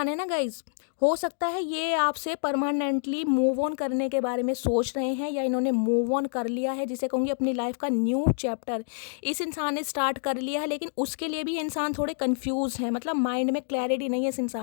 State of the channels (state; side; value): silent; right; digital silence